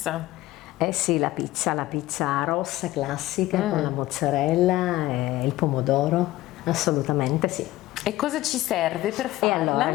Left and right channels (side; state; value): right; quieter; 16.7 dB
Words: Eh sì, la pizza rossa classica con la mozzarella e il pomodoro, assolutamente sì. E cosa ci serve per E farla? allora